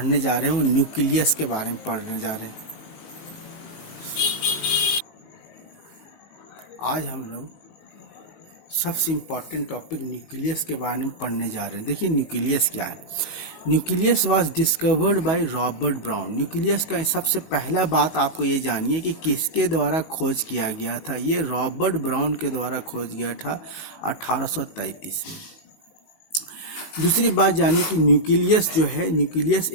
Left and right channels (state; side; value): late; right; 19 ms